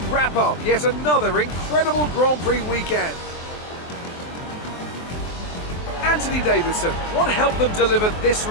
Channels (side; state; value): right; late; 23 ms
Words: wrap up yet another incredible Grand Prix weekend. Anthony Davidson, what helped them deliver this